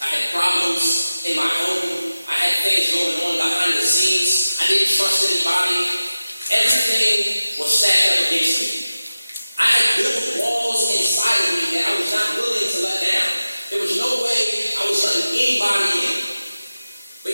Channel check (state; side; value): inverted; both; correlation -0.94